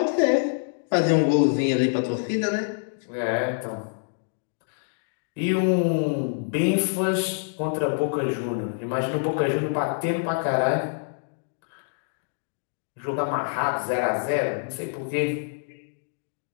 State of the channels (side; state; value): right; silent; digital silence